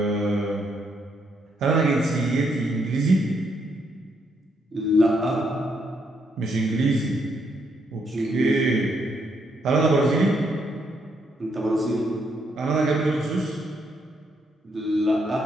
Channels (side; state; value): both; normal; correlation 0.75